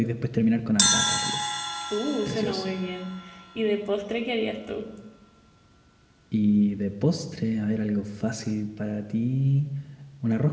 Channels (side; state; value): both; identical; correlation 1.00